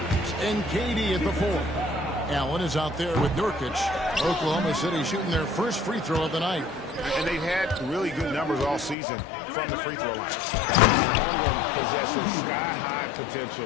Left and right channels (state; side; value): drops out; right; at 9.0 s